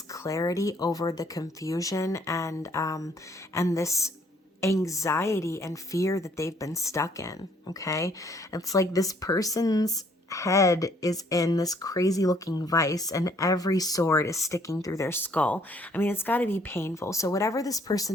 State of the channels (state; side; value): normal; both; correlation 0.63